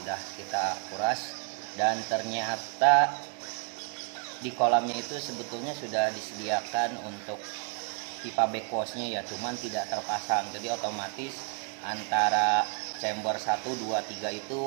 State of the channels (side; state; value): left; quieter; 39.8 dB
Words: kita kuras dan ternyata di kolamnya itu sebetulnya sudah disediakan untuk pipa backwashnya ya, cuman tidak terpasang. Jadi otomatis antara chamber 1, 2, 3